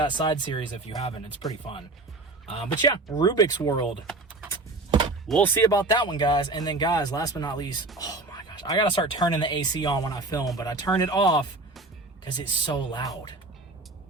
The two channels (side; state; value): left; quieter; 3.1 dB